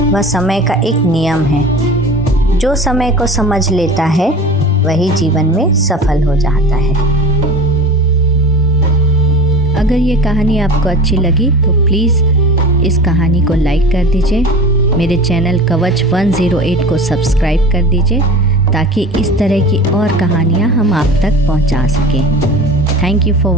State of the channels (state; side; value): normal; both; correlation 0.37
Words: वह समय का एक नियम है। जो समय को समझ लेता है वही जीवन में सफल हो जाता है। अगर ये कहानी आपको अच्छी लगी तो प्लीज़ इस कहानी को लाइक कर दीजिए। मेरे चैनल कवच 108 को सब्सक्राइब कर दीजिए ताकि इस तरह की और कहानियाँ हम आप तक पहुँचा सकें। Thank you for